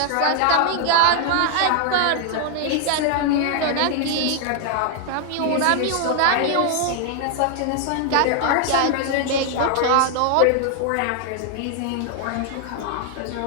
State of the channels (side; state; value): both; different; correlation 0.00